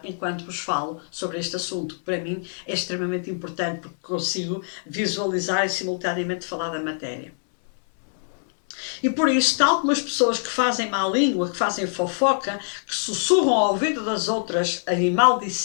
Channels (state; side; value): silent; right; 62 dB below the other